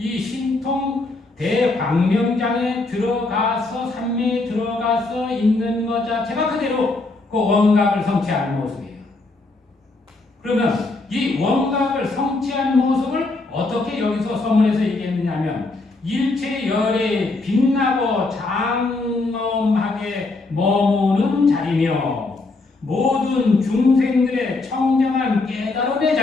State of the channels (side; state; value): right; quieter; 3.3 dB